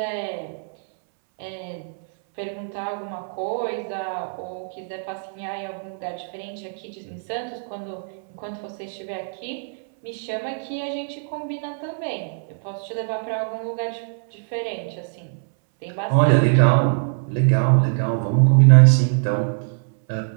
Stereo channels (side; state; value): left; silent; 63 dB below the other